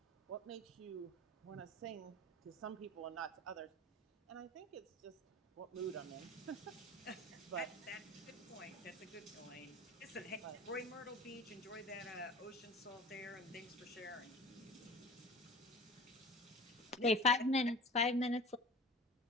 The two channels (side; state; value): both; normal; correlation 0.39